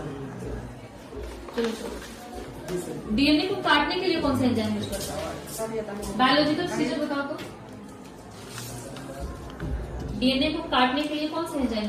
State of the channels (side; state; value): both; identical; correlation 1.00